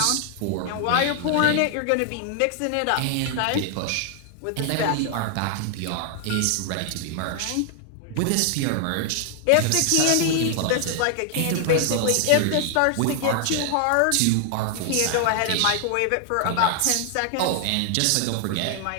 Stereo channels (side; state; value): both; different; correlation 0.00